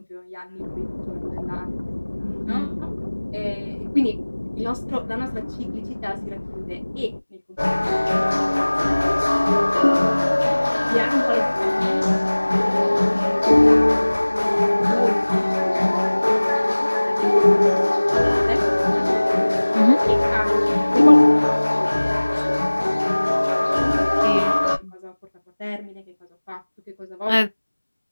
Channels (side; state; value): both; inverted; correlation -1.00